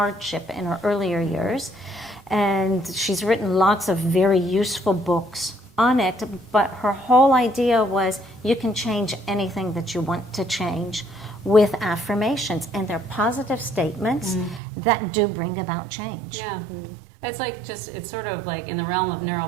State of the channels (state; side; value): drops out; left; at 14.6 s